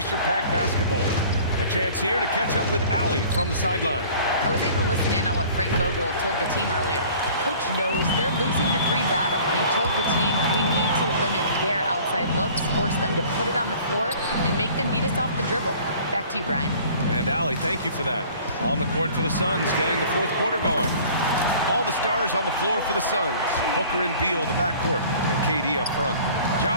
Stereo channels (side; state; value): both; inverted; correlation -0.48